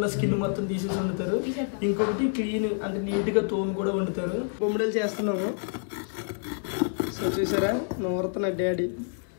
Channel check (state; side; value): silent; right; digital silence